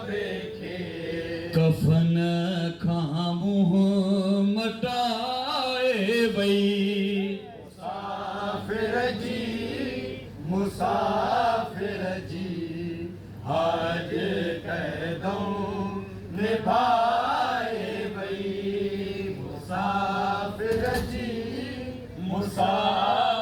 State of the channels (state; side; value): identical; both; correlation 1.00